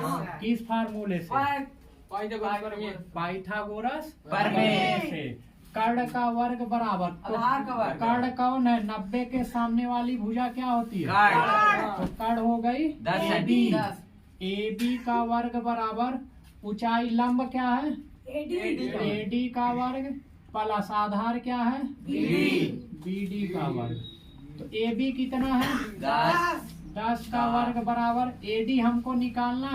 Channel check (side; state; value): both; identical; correlation 1.00